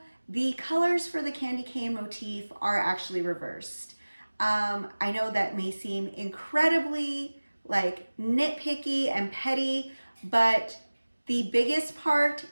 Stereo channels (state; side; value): inverted; both; correlation -1.00